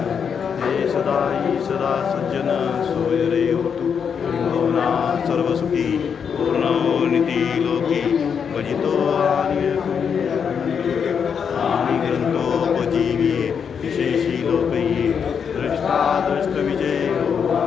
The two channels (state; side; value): quieter; right; 6.9 dB